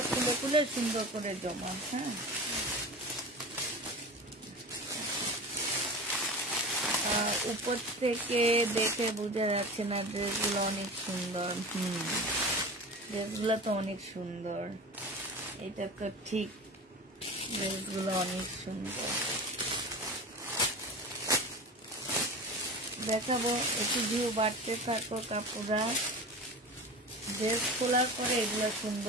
খুলে খুলে সুন্দর করে জমা হ্যাঁ আর উপর থেকে দেখে বোঝা যাচ্ছে না, ড্রেসগুলো অনেক সুন্দর। ড্রেসগুলো তো অনেক সুন্দর, এটা তো ঠিক, ড্রেসগুলো অনেক সুন্দর। দেখাবো, একটু ভিউ বাড়তে থাকো কাপড়া। ড্রেস খোলার পরে এগুলো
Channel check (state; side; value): normal; both; correlation 0.32